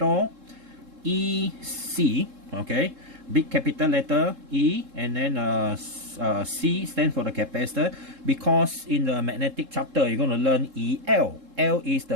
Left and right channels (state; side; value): late; left; 3.7 ms